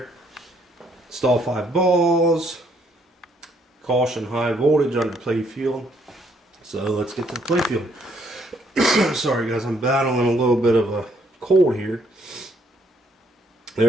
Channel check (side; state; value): both; normal; correlation 0.69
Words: Install 5 balls. Caution, high voltage under playfield. So let's get to the playfield. Sorry guys, I'm battling a little bit of a cold here.